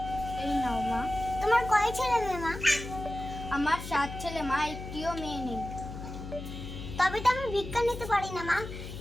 এই নাও মা। তোমার কয় ছেলে মেয়ে মা? আমার 7 ছেলে মা, একটিও মেয়ে নেই। তবে তো আমি ভিক্ষা নিতে পারি না মা।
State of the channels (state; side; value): noise; left; hum, 9 dB below the sound